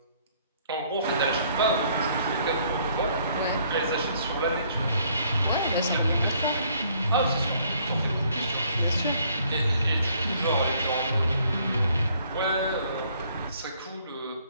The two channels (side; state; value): both; inverted; correlation -0.64